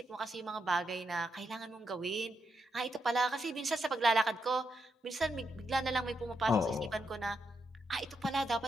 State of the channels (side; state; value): both; normal; correlation 0.82